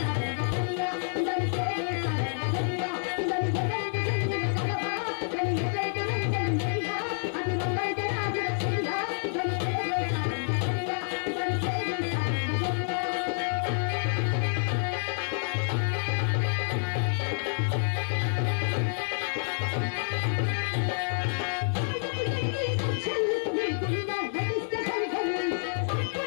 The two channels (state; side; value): silent; right; 58 dB below the other